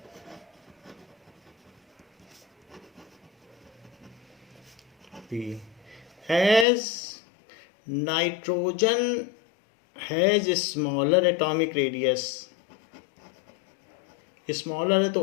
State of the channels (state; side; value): drops out; right; at 6.7 s